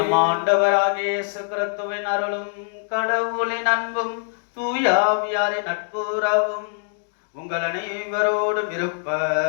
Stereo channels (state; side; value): silent; right; digital silence